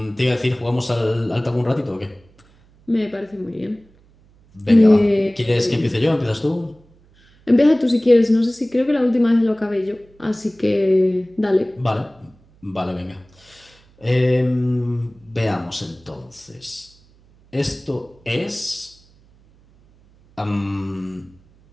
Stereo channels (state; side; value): noise; right; hum, 30 dB below the sound